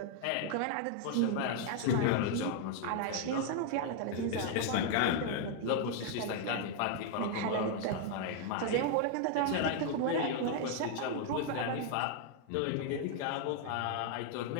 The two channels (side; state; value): both; different; correlation 0.00